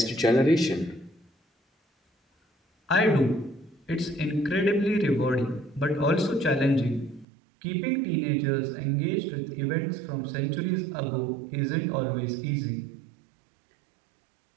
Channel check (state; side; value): drops out; left; at 7.2 s